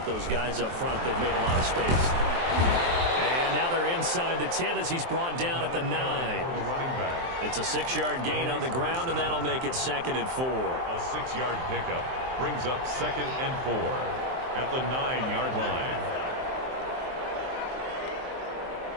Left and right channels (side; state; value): left; late; 23 ms